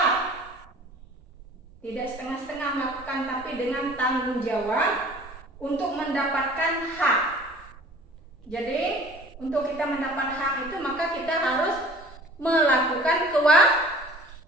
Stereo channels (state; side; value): normal; both; correlation 0.47